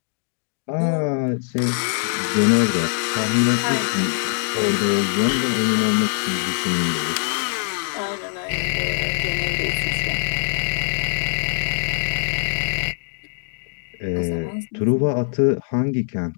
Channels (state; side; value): silent; right; 64 dB below the other